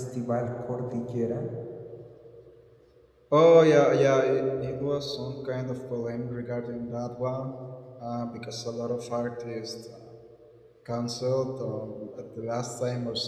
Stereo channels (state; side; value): identical; both; correlation 1.00